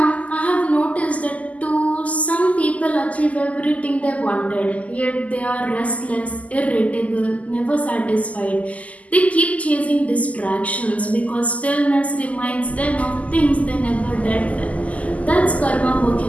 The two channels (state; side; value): late; right; 0.071 ms